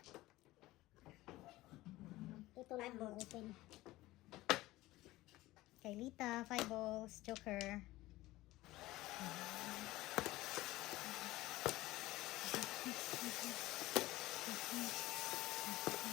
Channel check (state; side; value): quieter; right; 17.9 dB